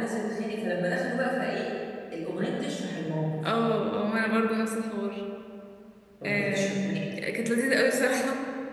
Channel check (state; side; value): identical; both; correlation 1.00